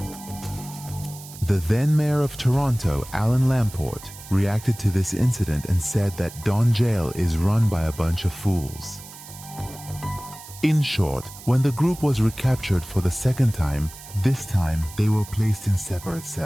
The then mayor of Toronto, Alan Lamport, reacted to this incident and said that Don Jail is run by a bunch of fools. In short, when the group was recaptured for the second time, this time they were placed in separate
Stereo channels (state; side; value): noise; right; hiss, 16 dB below the sound